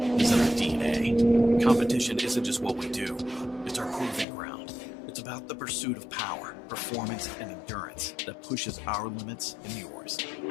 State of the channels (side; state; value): right; drops out; at 4.2 s